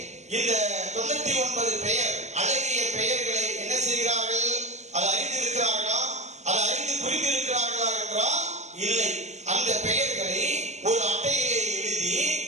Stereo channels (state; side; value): late; left; 0.33 ms